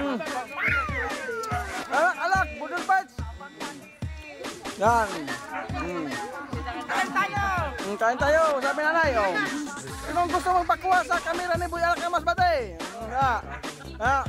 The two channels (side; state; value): both; identical; correlation 1.00